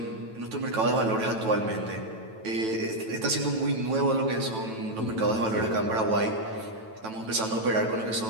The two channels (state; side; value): late; left; 9.1 ms